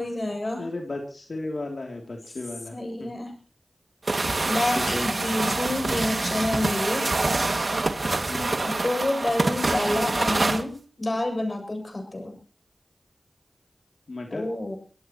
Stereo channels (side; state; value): both; normal; correlation 0.96